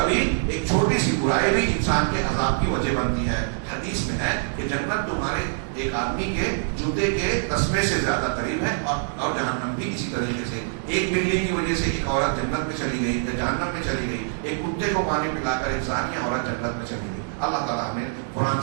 ایک چھوٹی سی برائی بھی انسان کے عذاب کی وجہ بنتی ہے. حدیث میں ہے کہ جنت تمہارے ایک آدمی کے جوتے کے تسمے سے زیادہ قریب ہے، اور جہنم بھی اسی طریقے سے. ایک بلی کی وجہ سے ایک عورت جنت میں چلی گئی یا جہنم میں چلی گئی، ایک کتے کو پانی پلا کر ایک ثانیہ عورت جنت میں چلی گئی. اللہ تعالیٰ ہمیں قرآن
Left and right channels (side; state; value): left; silent; digital silence